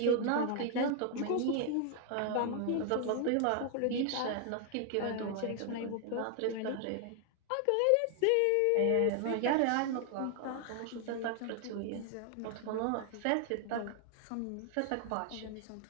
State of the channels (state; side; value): different; both; correlation 0.00